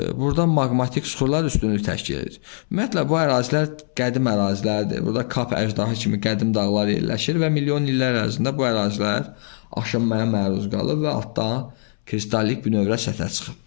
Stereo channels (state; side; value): silent; right; 62 dB below the other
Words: burada maqmatik suxurlar üstünlük təşkil edir. Ümumiyyətlə, bu ərazilər qədim ərazilərdir. Burada Kap əjdahı kimi qədim dağlar yerləşir və milyon illər ərzində bu ərazilər aşınmaya məruz qalıb və altdan kristallik bünövrə səthə çıxıb.